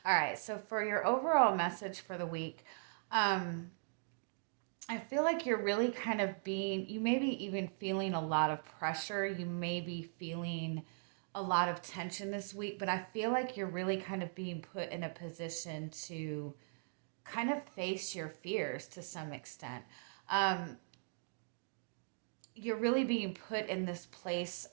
All right, so for your overall message for the week, I feel like you're really kind of you may be even feeling a lot of pressure. You may be feeling a lot of tension this week, but I feel like you're really kind of being put in a position to kind of face your fears to some extent. You're really being put in this place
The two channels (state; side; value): silent; left; digital silence